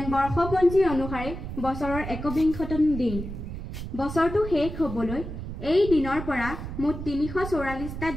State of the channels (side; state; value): right; noise; rumble, 8 dB below the sound